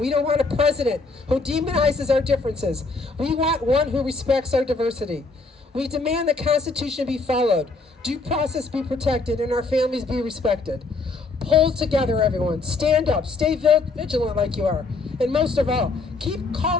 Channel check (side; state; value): right; quieter; 3.7 dB